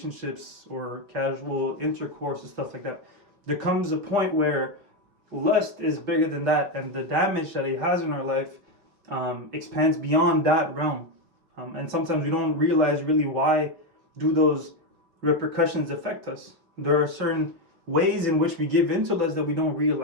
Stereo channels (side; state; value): left; late; 5.9 ms